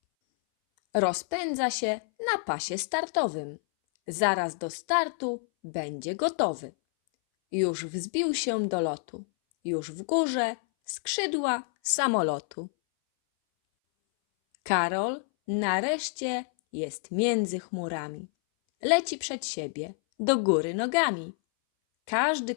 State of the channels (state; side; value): silent; right; 59 dB below the other